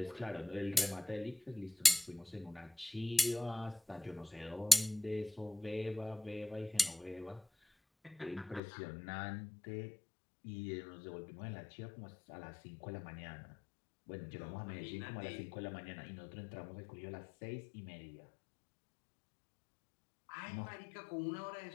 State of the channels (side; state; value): right; drops out; at 8.6 s